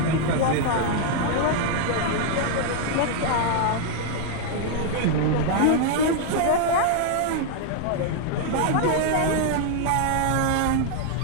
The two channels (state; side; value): different; both; correlation 0.00